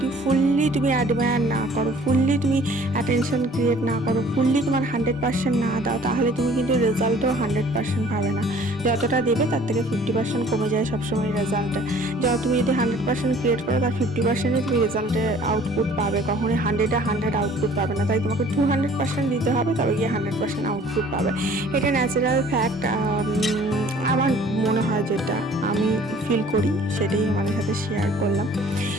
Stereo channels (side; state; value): both; normal; correlation 0.53